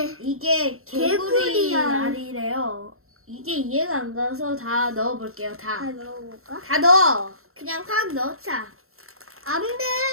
이게 개구리알이래요. 이게 이해가 안 가서 다 넣어볼게요. 다 넣어볼까? 다 넣어. 그냥 확 넣자. 안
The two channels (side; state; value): left; late; 0.62 ms